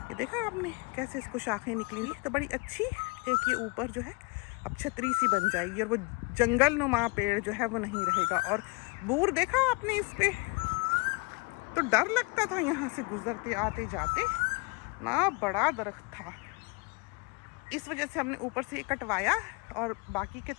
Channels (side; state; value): right; quieter; 29.6 dB